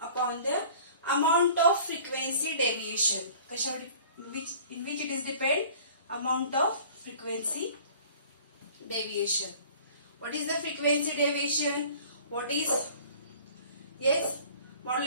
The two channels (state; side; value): inverted; both; correlation -0.48